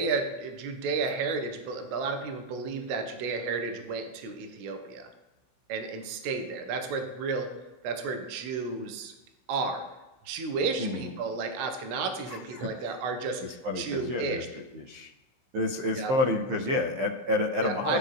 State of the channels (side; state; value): left; late; 16 ms